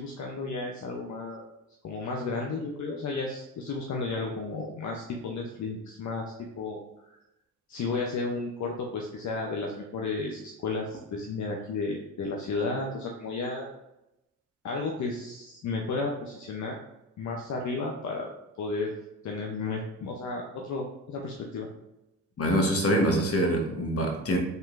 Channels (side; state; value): both; normal; correlation 0.24